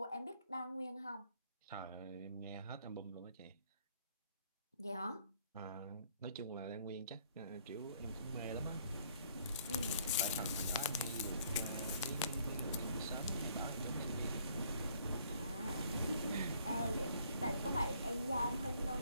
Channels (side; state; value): both; inverted; correlation -0.63